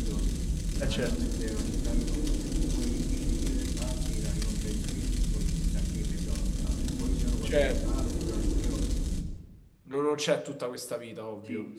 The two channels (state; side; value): identical; both; correlation 1.00